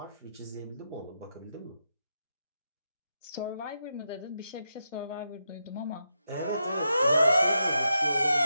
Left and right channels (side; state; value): both; inverted; correlation -0.85